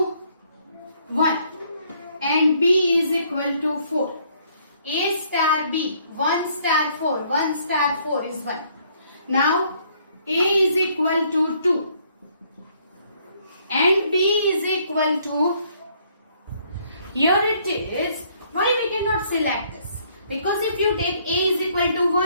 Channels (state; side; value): inverted; both; correlation -0.66